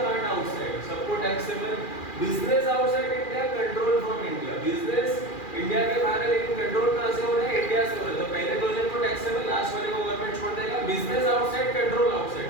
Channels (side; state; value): right; late; 2.4 ms